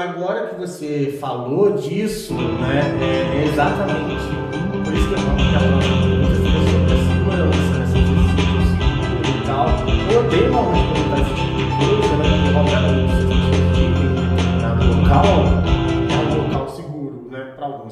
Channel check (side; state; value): both; identical; correlation 1.00